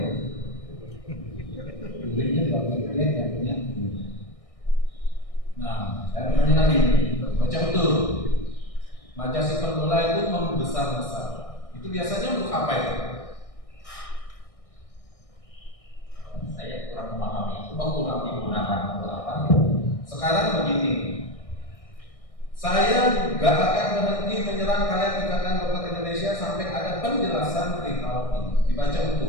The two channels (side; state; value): right; late; 1.6 ms